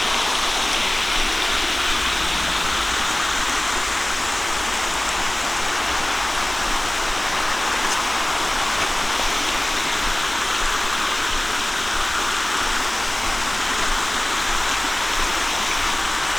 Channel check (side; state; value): left; noise; rumble, 20 dB below the sound